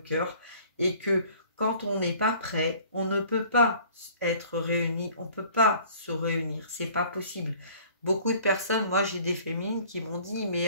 et que quand on n'est pas prêt, on ne peut pas être réunis, on ne peut pas se réunir, c'est pas possible. Beaucoup de personnes, moi j'ai des féminines qui m'ont dit,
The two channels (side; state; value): both; inverted; correlation -0.52